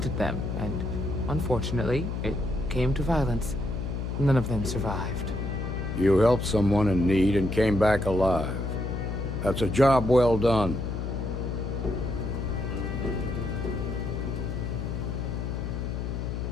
them, and unfortunately, it came to violence. None of them survived. You helped someone in need and came back alive. That's a job well done.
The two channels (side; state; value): left; noise; hum, 3 dB below the sound